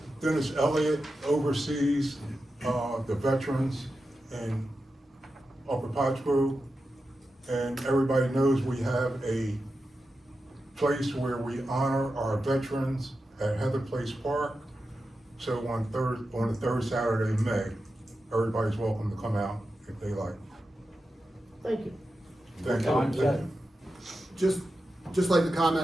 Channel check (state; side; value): normal; both; correlation 0.90